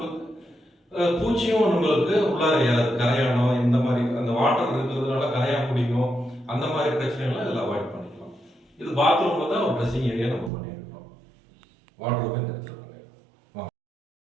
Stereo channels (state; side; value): drops out; left; at 10.5 s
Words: பூச்சியும் நம்மளுக்கு உள்ளார கரையானம், இந்த மாதிரி அந்த வாட்டர் இருக்கிறதுனால கரையா பிடிக்கும், அந்த மாதிரி பிரச்சனைகள்லாம் இதில் அவாய்ட் பண்ணிக்கலாம். இது பாத்ரூம்ல தான் ஒரு ட்ரெஸ்ஸிங் ஏரியா நம்ம பண்ணியிருக்கோம். வாட்டர் இந்த இடத்துல பண்ணியிருக்கோம்.